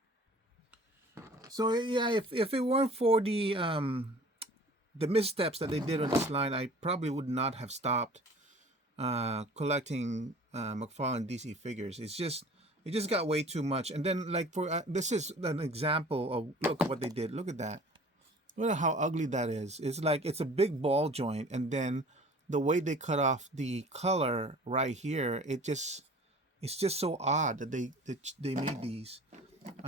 So yeah, if it weren't for the missteps that they did on this line, I probably would not have stopped collecting McFarlane DC figures. It just got way too much. And then like for this is an example of, look what they did. Look at that. Look at how ugly that is. It's like it's a big ball joint, and then the way they cut off the color right here, it's just so odd that they made these.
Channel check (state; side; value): normal; both; correlation 0.46